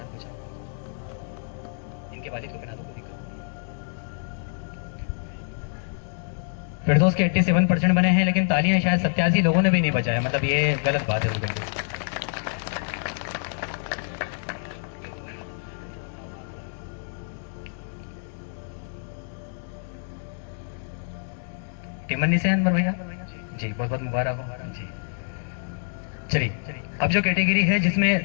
इनके वालिद को बना दो। फिरदौस के 87% बने हैं, लेकिन तालियां शायद 87 लोगों ने भी नहीं बजाया, मतलब ये गलत बात है। टिमन्नी से अंदर भैया जी, बहुत बहुत मुबारक हो जी। चलिए, अब जो कैटेगरी है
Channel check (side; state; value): right; silent; digital silence